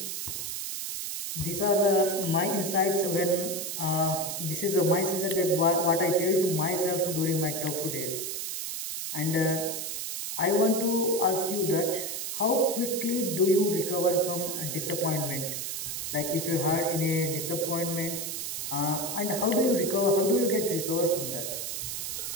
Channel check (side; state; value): right; noise; hiss, 4 dB below the sound